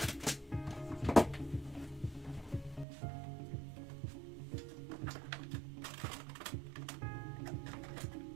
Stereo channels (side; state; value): left; drops out; at 2.9 s